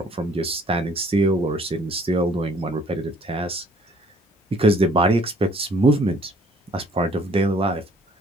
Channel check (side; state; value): both; normal; correlation 0.59